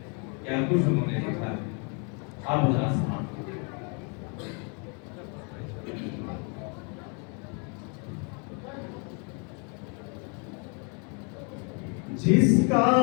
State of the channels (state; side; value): quieter; right; 36.3 dB